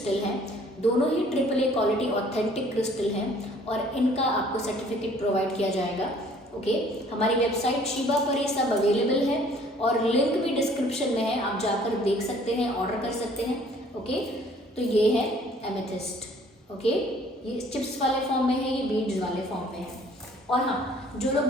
हैं, दोनों ही AAA क्वालिटी ऑथेंटिक क्रिस्टल हैं, और इनका आपको सर्टिफिकेट प्रोवाइड किया जाएगा। ओके, हमारी वेबसाइट शिबा पर ये सब अवेलेबल है, और लिंक भी डिस्क्रिप्शन में है, आप जाकर देख सकते हैं, ऑर्डर कर सकते हैं। ओके, तो ये है एमेथिस्ट। ओके, ये चिप्स वाले फॉर्म में है, ये बीड्स वाले फॉर्म में है। और हाँ, जो लोग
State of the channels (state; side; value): normal; both; correlation 0.57